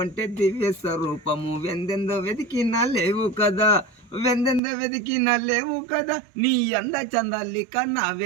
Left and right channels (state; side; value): drops out; left; at 4.6 s